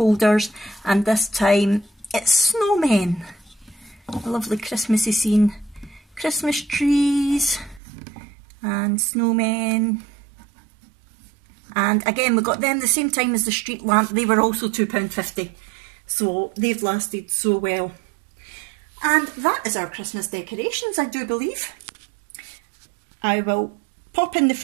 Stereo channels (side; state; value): left; drops out; at 7.8 s